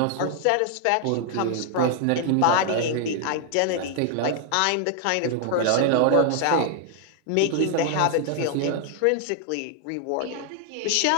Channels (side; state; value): both; different; correlation 0.00